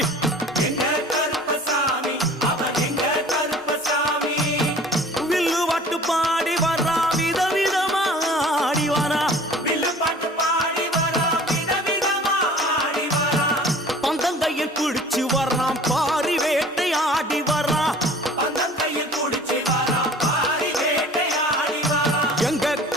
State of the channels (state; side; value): normal; both; correlation 0.46